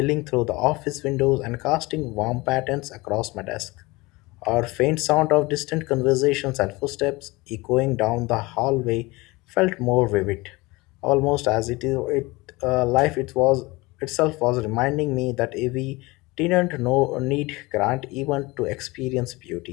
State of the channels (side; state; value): right; quieter; 23.0 dB